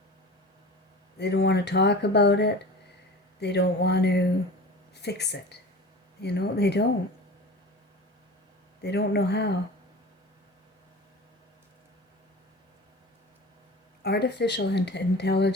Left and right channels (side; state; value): both; normal; correlation 0.36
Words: They don't want to talk about it. They don't want to fix it. You know, they don't. They don't know how. Artificial